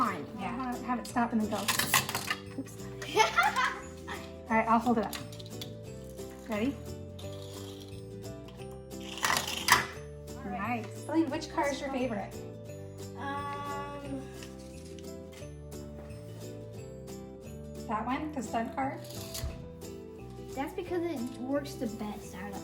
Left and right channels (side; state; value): both; identical; correlation 1.00